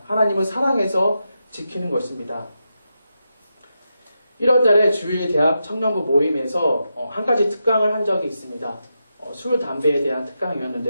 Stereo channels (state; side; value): inverted; both; correlation -0.86